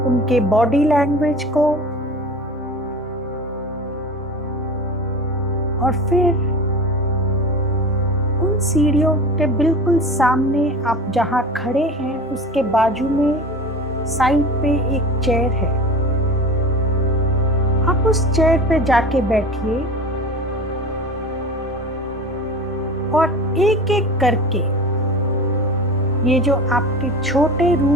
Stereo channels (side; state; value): both; normal; correlation 0.34